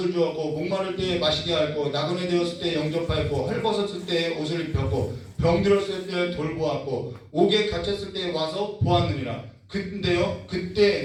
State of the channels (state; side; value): identical; both; correlation 1.00